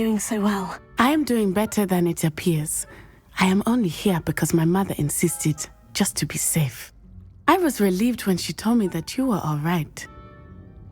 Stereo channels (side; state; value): both; identical; correlation 1.00